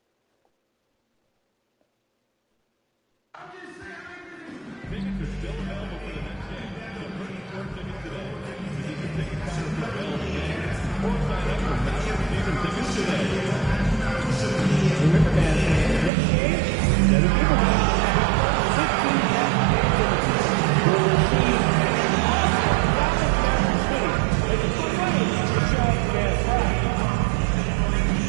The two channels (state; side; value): drops out; left; at 16.1 s